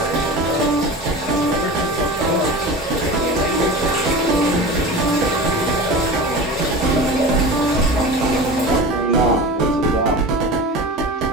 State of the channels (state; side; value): normal; both; correlation 0.32